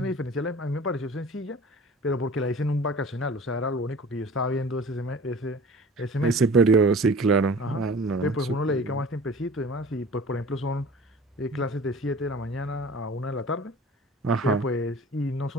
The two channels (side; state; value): both; normal; correlation 0.43